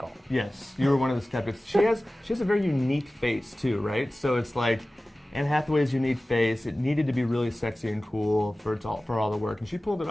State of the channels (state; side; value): normal; both; correlation 0.97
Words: Yes, you were one of the skeptics. She has a very unique face too, right? So it's like Anne Hathaway's unique face. It needed to be really sexy and cool for all the work, and she pulled it